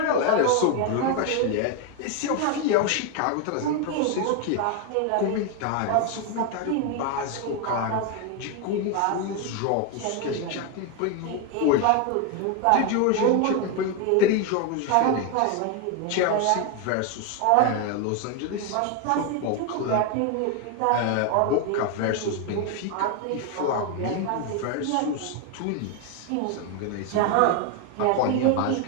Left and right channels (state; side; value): different; both; correlation 0.01